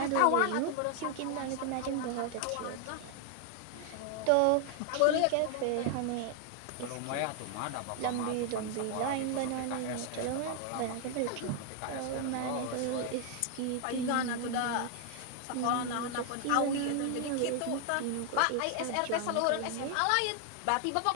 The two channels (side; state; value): both; different; correlation 0.00